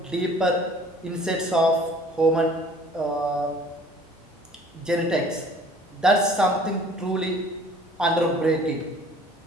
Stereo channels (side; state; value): both; normal; correlation 0.52